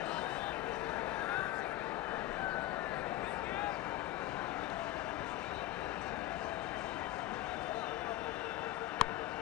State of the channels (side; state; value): right; quieter; 15.3 dB